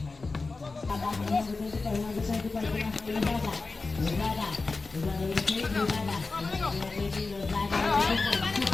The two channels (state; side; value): quieter; right; 3.8 dB